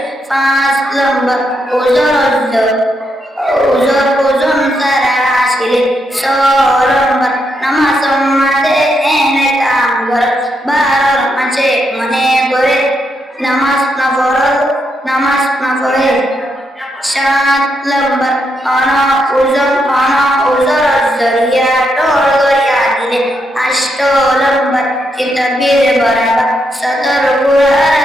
পাঁচ নম্বর ওজন তারা আসিলে, ছয় নম্বর নামাজ সম্মাদে এনে কাম কর, 12 মাঝে মনে করে নামাজ না পড়ে, 7 নম্বর ওজর জরিয়া টোল করিয়া দিলে, 8 নম্বর কিতাবের বরাবর সদর কুরআন,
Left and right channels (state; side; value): normal; both; correlation 0.80